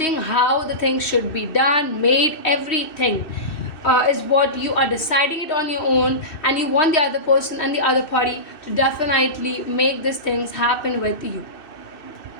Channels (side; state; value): right; late; 2.6 ms